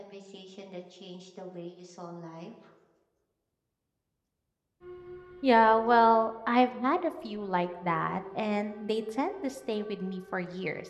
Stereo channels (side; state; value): both; identical; correlation 1.00